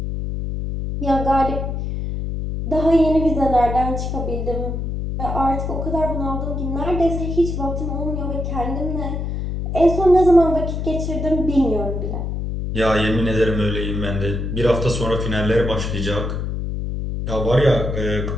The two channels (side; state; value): left; noise; hum, 3 dB below the sound